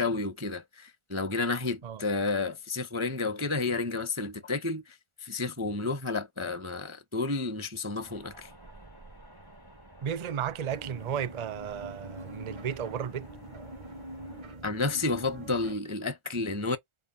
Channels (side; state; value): left; late; 1.4 ms